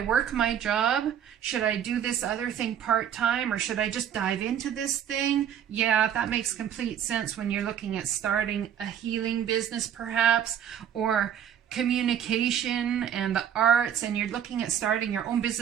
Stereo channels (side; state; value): left; quieter; 9.2 dB